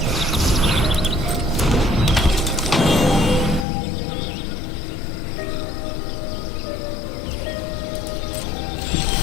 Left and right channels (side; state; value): right; drops out; at 3.7 s